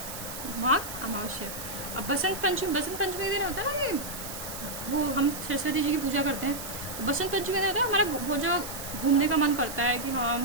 माघ अमावस्या। अब बसंत पंचमी के दिन होता है ना कि वो हम सरस्वती जी की पूजा करते हैं, तो बसंत पंचमी का होता है हमारा वो जो घूमने का मन करता है कि हाँ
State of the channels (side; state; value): right; noise; hiss, 9 dB below the sound